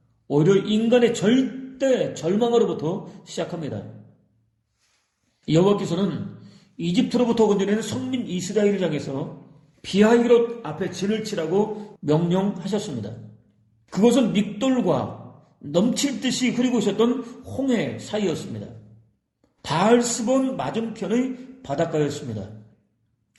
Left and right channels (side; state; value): both; identical; correlation 1.00